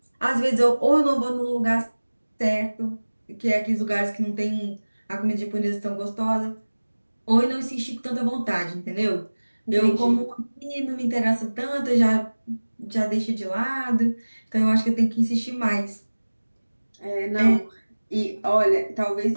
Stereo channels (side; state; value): both; inverted; correlation -1.00